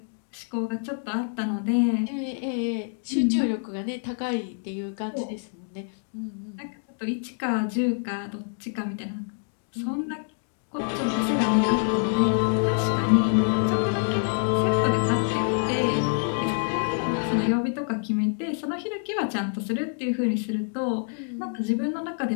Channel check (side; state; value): right; silent; 61 dB below the other